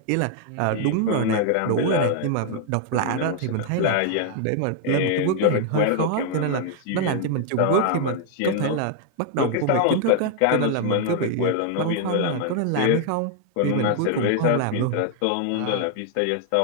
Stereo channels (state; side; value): different; both; correlation 0.00